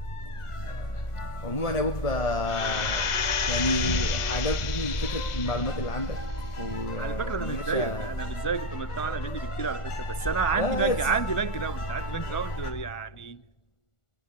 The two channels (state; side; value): late; right; 1.4 ms